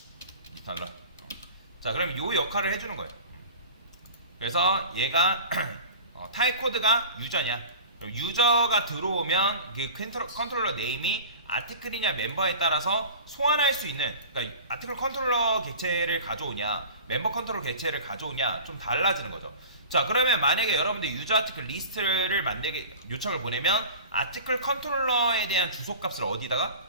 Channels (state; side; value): inverted; both; correlation -0.37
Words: 리턴 널. 자, 그럼 요 역할을 해주는 거예요. 그래서 얘가 타입 코드가 유저냐. 그럼 유저가 들어오면 그 컨트롤러 네임이 아티클이냐 멤버에 따라서 소환할 수 있는, 그러니까 아티클 컨트롤러 객체를 가져오냐 멤버 컨트롤러 객체를 가져오냐 좀 달라지는 거죠. 자, 그러면 만약에 여러분들 유저 아티클 리스트를 만들게 요청을 보내면 아티클 컨트롤러에 대한 주소값을 어디다가?